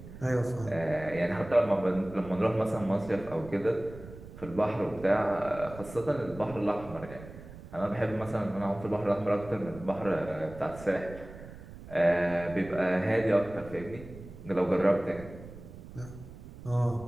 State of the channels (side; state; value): right; noise; rumble, 15 dB below the sound